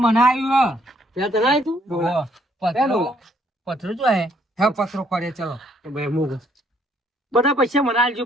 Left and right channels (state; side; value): normal; both; correlation 0.67